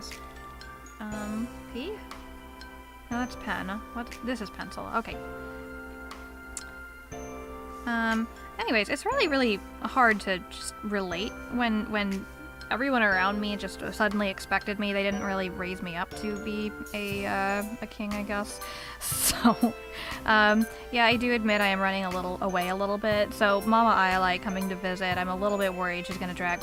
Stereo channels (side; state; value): both; identical; correlation 1.00